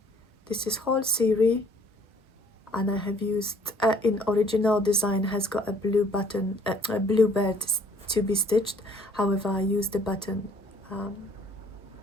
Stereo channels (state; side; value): normal; both; correlation 0.59